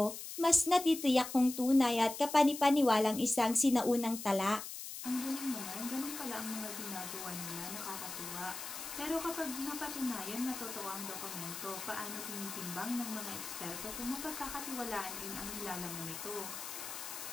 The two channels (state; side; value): noise; left; hiss, 9 dB below the sound